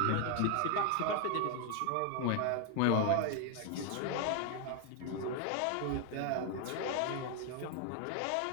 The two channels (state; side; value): different; both; correlation 0.01